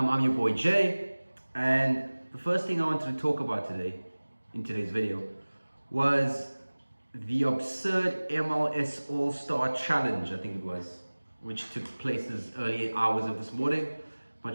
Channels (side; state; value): both; inverted; correlation -1.00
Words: your boy Jay, and the first thing I wanted to talk about in today's video was the absurd MLS All Star challenge, I think it was, which took place as early hours of this morning.